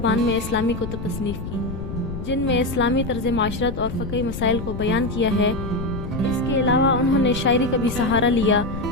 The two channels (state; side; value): noise; left; rumble, 7 dB below the sound